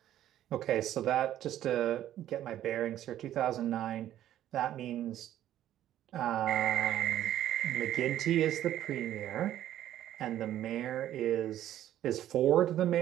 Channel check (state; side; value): quieter; left; 12.2 dB